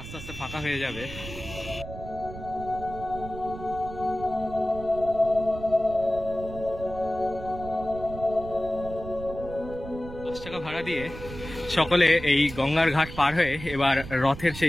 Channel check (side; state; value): right; noise; rumble, 12 dB below the sound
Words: আস্তে আস্তে ফাঁকা হয়ে যাবে। 10 টাকা ভাড়া দিয়ে সকলে এই গঙ্গার ঘাট পার হয়ে এবার রথের